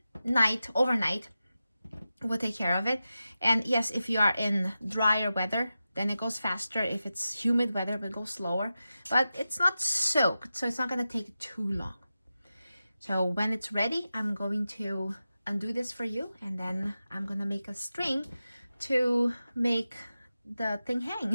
night, overnight, will take care of it. And yes, if you are in drier weather, then it goes faster. If it's humid weather, it will go slower, but it's not soaked, so it's not going to take too long. So when it's ready, I'm going to undo this for you, and then I'm going to make a string to make the thing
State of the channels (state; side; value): inverted; both; correlation -0.92